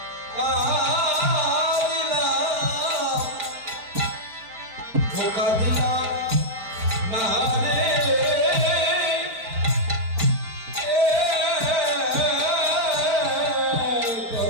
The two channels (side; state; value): left; late; 4.4 ms